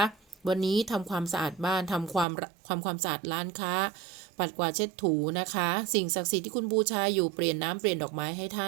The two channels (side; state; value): left; drops out; at 2.2 s